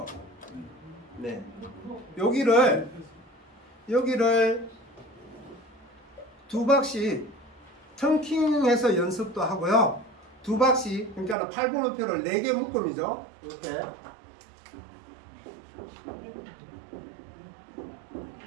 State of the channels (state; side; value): drops out; left; at 11.4 s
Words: 네. 여기를 두 박씩 텅킹해서 연습도 하고요. 두 박씩, 그러니까 8번호표를 4개 묶음이죠. 이렇게